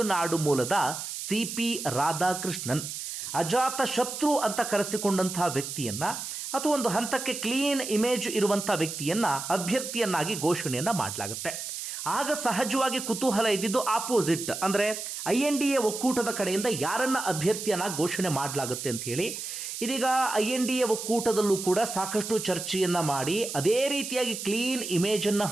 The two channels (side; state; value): right; noise; hiss, 6 dB below the sound